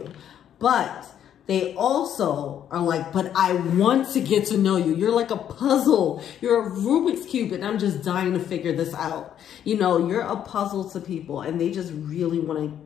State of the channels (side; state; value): right; quieter; 9.9 dB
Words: But they also are like, but I want to get to know you. You're like a puzzle. You're a Rubik's Cube, and I'm just dying to figure this out. You know, you're a puzzle to people, and they just really want to